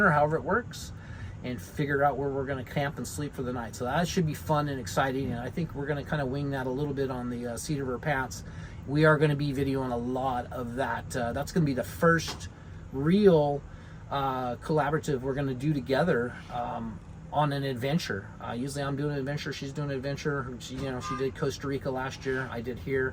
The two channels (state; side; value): identical; both; correlation 1.00